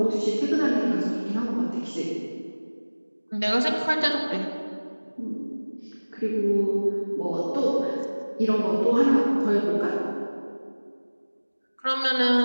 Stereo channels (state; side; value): inverted; both; correlation -1.00